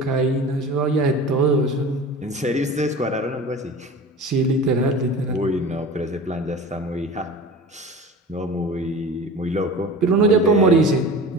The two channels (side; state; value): both; normal; correlation 0.36